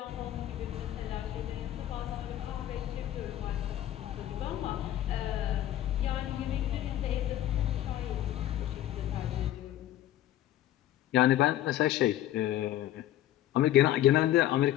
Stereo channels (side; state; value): right; quieter; 13.0 dB